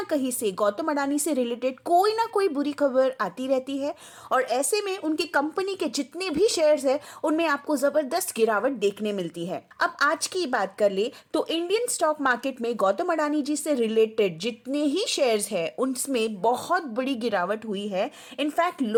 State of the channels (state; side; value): identical; both; correlation 1.00